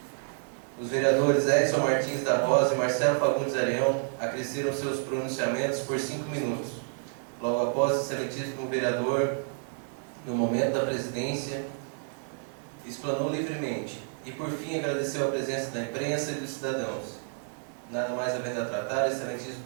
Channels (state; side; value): silent; left; 57 dB below the other